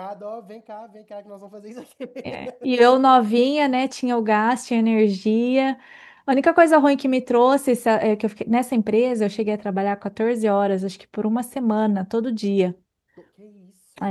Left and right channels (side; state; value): both; identical; correlation 1.00